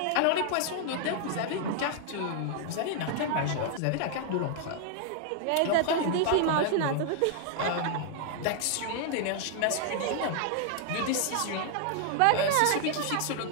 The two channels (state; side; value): different; both; correlation 0.00